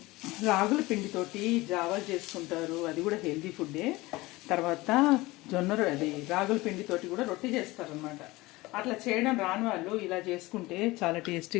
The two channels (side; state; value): right; quieter; 20.6 dB